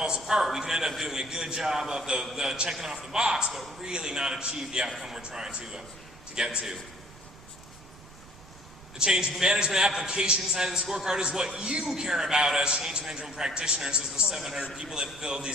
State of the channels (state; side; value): noise; right; rumble, 20 dB below the sound